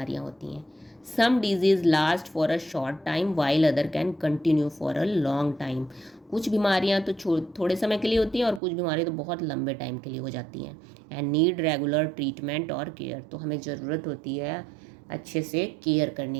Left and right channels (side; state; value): left; drops out; at 8.6 s